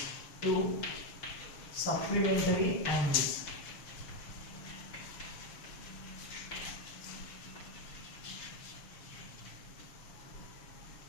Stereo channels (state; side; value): late; right; 6.6 ms